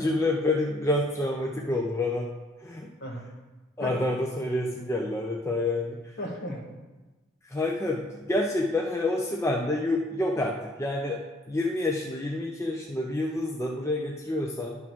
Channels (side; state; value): both; normal; correlation 0.63